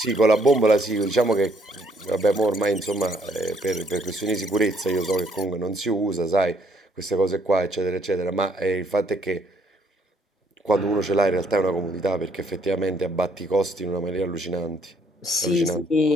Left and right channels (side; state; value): both; normal; correlation 0.67